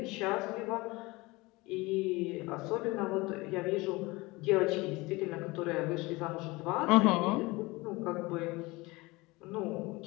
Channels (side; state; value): right; quieter; 22.8 dB